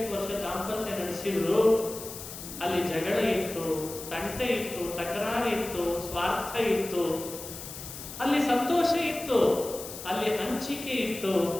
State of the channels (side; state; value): left; noise; hiss, 11 dB below the sound